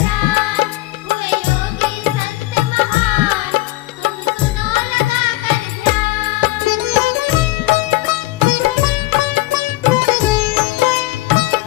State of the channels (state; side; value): quieter; right; 18.8 dB